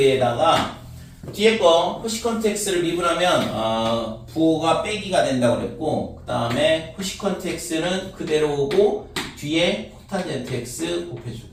뒤에 거 코시컨트 x를 미분하면 부호가 빼기가 된다고 그랬고, 그 다음에 코시컨트 x는 그대로 오고 뒤에 코탄젠트 x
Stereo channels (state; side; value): identical; both; correlation 1.00